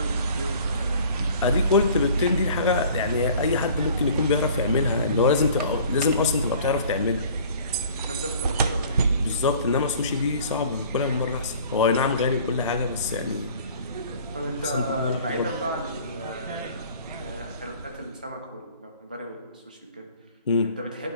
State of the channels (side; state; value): both; inverted; correlation -0.49